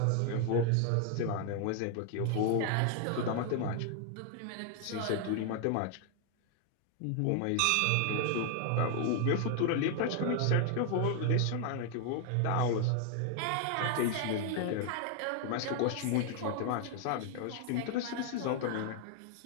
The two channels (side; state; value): both; different; correlation 0.00